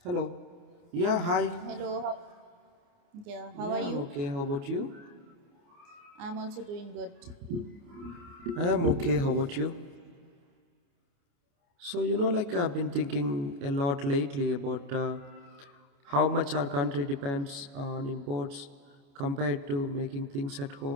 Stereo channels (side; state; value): left; late; 29 ms